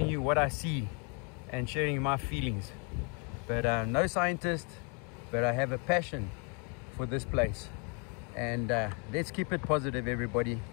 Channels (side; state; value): right; quieter; 34.0 dB